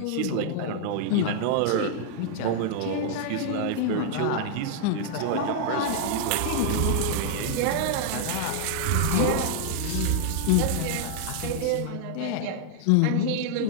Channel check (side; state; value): both; different; correlation -0.01